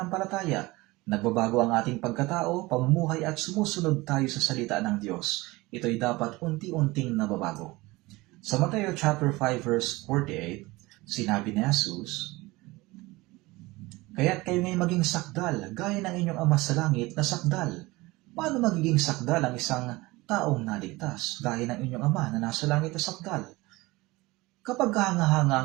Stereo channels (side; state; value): left; quieter; 21.3 dB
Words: Nagbabago ang ating pagkatao, pamumuhay at sumusunod tayo sa salita ng Diyos. Ito ay dapat unti-unting nababago. Sa Mateo chapter 5 verse 48, sinabi ni Jesus, "Kaya't kayo ngay maging sakdal, gaya ng inyong Ama sa langit na sakdal." Paano magiging sakdal ang isang taong naligtas, gaya ng inyong Ama na nasa langit na sakdal? Kapag hanga-hanga